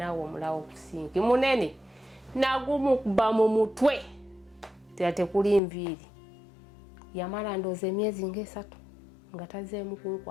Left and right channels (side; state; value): right; drops out; at 5.6 s